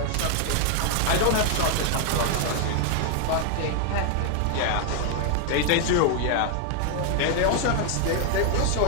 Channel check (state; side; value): different; both; correlation 0.00